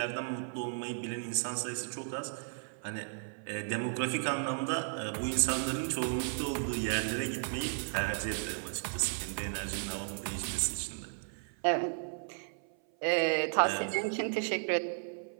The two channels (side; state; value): left; silent; 55 dB below the other